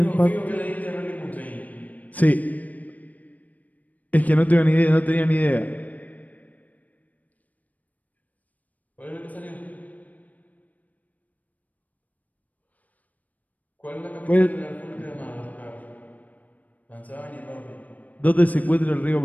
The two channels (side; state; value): right; late; 0.075 ms